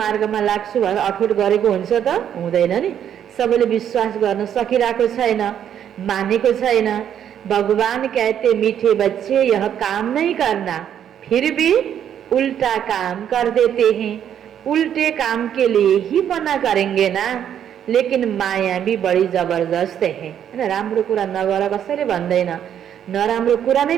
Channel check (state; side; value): quieter; left; 9.5 dB